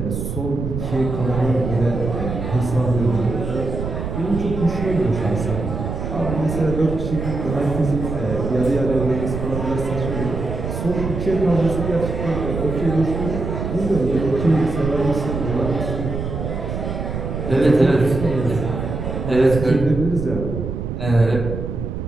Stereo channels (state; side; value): noise; right; rumble, 4 dB below the sound